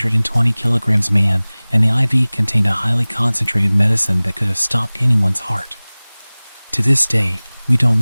kilograms man, and the IV contained a highly concentrated medicine that could have stopped anyone's heart. To this day, we don't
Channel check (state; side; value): inverted; both; correlation -1.00